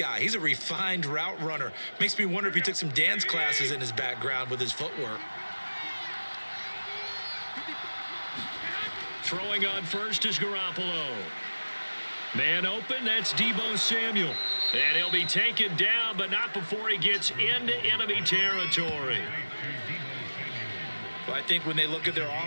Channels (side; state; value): both; inverted; correlation -1.00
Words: He's a refined route runner. Makes me wonder if he took some dance classes in his background with his footwork. Throwing on first is Garoppolo. Man open, that's Deebo Samuel. And he'll be taken down, but not before he gets into enemy territory. Well, I think when they look at their